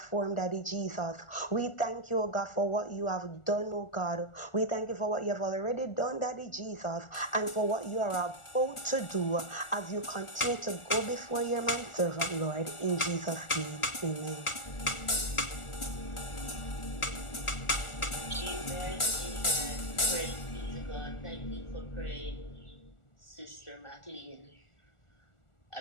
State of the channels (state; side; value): late; right; 1.4 ms